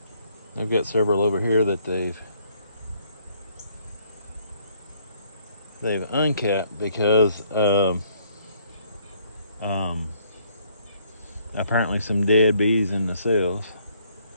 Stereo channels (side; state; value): both; inverted; correlation -0.66